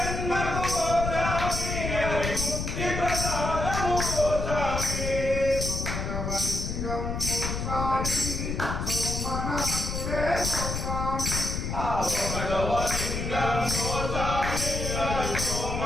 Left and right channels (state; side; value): noise; left; rumble, 3 dB below the sound